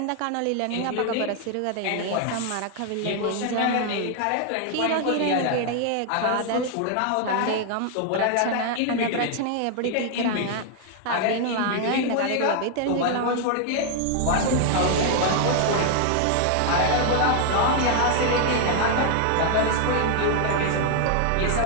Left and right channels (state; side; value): different; both; correlation 0.00